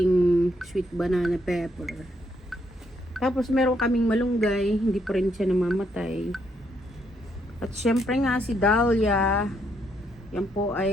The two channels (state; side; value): normal; both; correlation 0.74